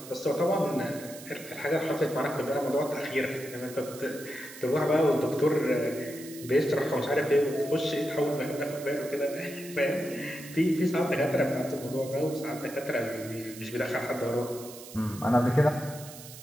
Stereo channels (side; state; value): right; noise; hiss, 15 dB below the sound